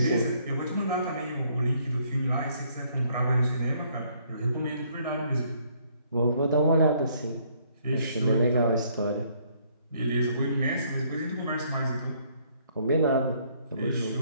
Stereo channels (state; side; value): inverted; both; correlation -0.66